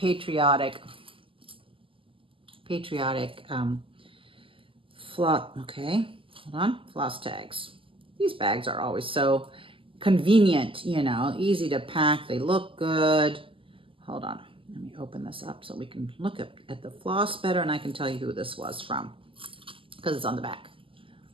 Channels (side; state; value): left; late; 0.25 ms